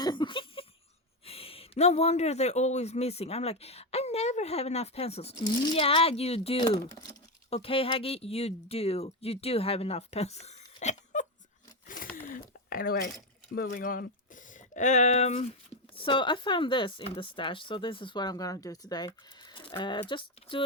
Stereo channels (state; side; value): normal; both; correlation 0.10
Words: No wonder they're always missing. I'm like, I never have enough pencils. Yeah, you do. Okay, Haggy, you do. You do have enough pencils. Anyway, moving on. So I found this in the stash. So this is what I'm going to do today. Just do